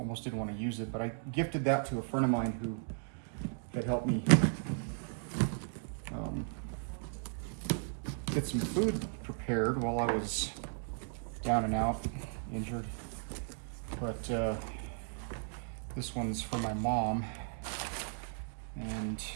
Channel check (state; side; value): silent; left; digital silence